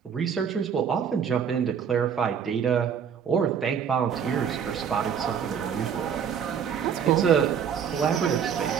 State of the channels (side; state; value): left; quieter; 7.6 dB